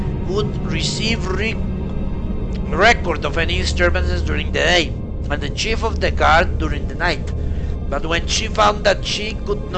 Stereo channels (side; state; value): both; identical; correlation 1.00